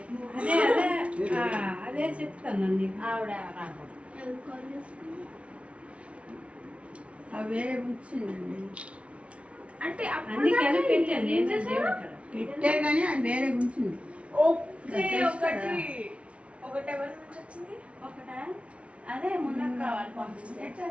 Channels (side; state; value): left; late; 0.062 ms